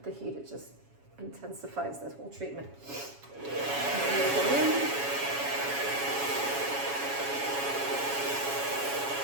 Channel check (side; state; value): left; late; 7.2 ms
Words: the heat, it just intensifies this whole treatment.